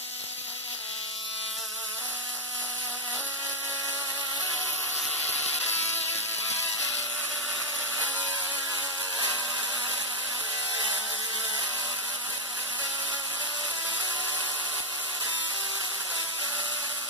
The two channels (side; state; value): both; normal; correlation -0.02